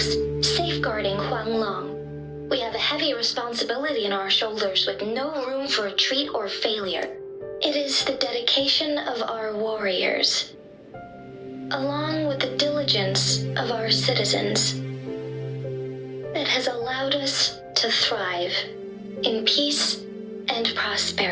safeguarding Huanglong. We have a heavy responsibility on our shoulders with no room for retreat or failure. It is the dedication of our warriors, along with the diligence of our citizens, that has allowed us to thrive in peace and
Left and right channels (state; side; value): identical; both; correlation 1.00